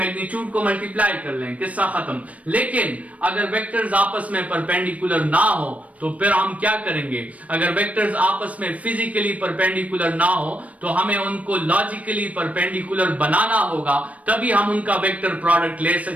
को मल्टीप्लाई कर लें, किस्सा खत्म। लेकिन अगर वेक्टर्स आपस में परपेंडिकुलर ना हो तो फिर हम क्या करेंगे? अगर वेक्टर्स आपस में फिजिकली परपेंडिकुलर ना हो तो हमें उनको लॉजिकली परपेंडिकुलर बनाना होगा, तभी हम उनका वेक्टर प्रोडक्ट ले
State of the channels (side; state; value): left; late; 0.067 ms